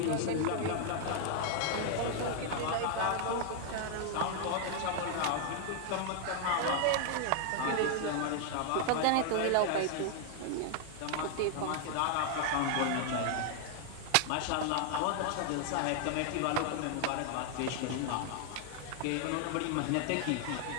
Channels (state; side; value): different; both; correlation 0.00